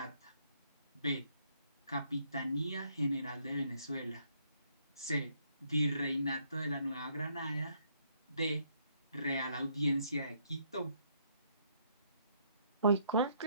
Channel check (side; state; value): both; inverted; correlation -0.70